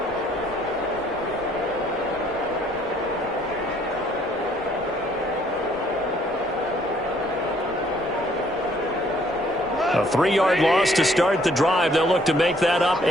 A 3-yard loss to start the drive. They'll look to make that up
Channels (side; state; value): both; normal; correlation 0.63